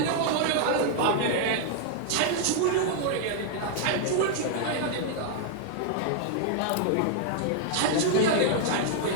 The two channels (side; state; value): both; different; correlation 0.00